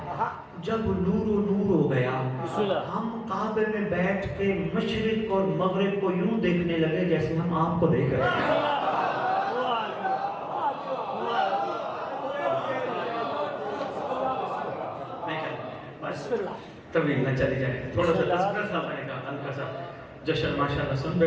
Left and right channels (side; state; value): both; identical; correlation 1.00